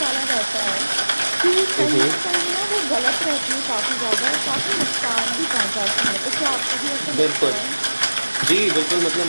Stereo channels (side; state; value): both; inverted; correlation -1.00